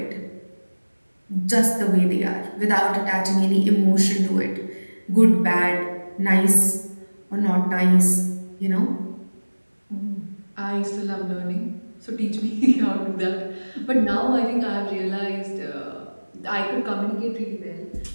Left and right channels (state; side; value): inverted; both; correlation -1.00